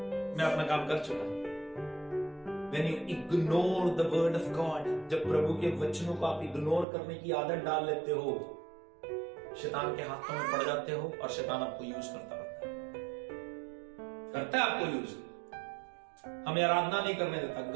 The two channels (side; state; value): left; drops out; at 6.9 s